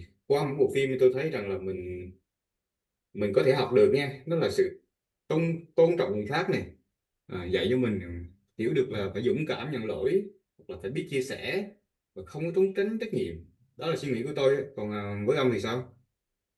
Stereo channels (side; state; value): both; identical; correlation 1.00